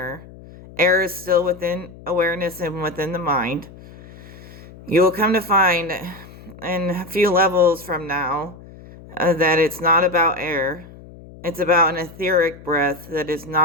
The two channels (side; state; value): left; noise; hum, 19 dB below the sound